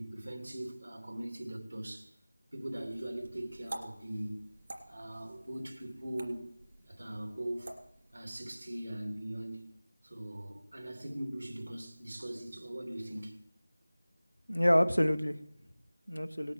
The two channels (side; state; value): both; inverted; correlation -0.99